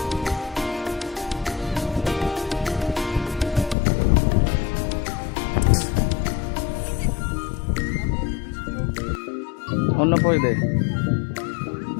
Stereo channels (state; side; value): drops out; right; at 3.8 s